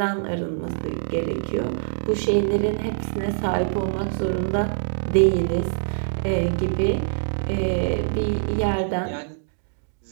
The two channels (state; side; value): silent; left; digital silence